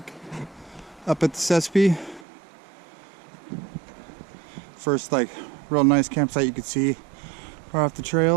up at the Sespe. First, like, real nice campsite you could see. We're off the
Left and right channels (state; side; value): drops out; left; at 2.2 s